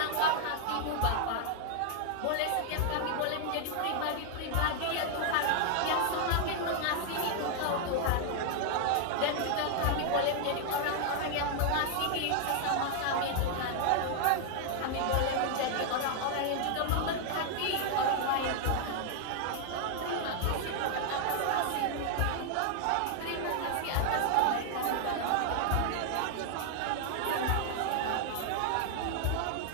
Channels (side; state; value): both; different; correlation 0.00